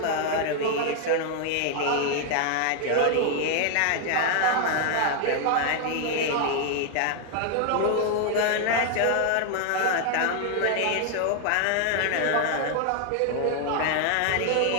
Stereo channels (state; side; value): different; both; correlation 0.00